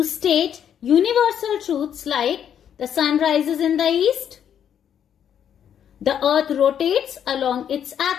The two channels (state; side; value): quieter; right; 9.0 dB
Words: state universal truths like the sun rises in the east. The earth rotates along its